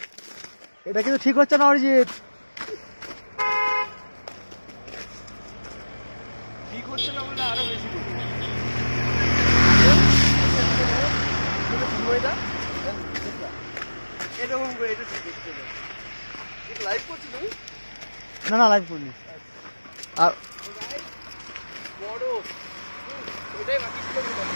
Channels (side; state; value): both; inverted; correlation -1.00